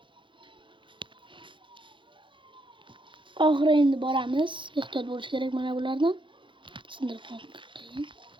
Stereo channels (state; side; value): late; left; 0.24 ms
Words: Oxiri endi boramiz. Ehtiyot bo'lish kerak mana bulardan. Sindirib qo'ying.